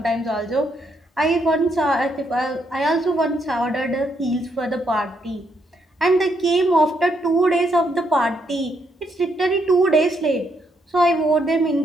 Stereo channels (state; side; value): normal; both; correlation 0.76